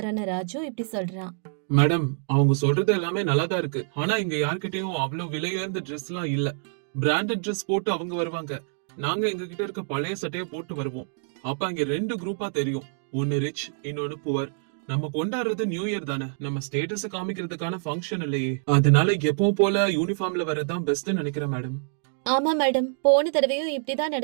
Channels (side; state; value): left; silent; digital silence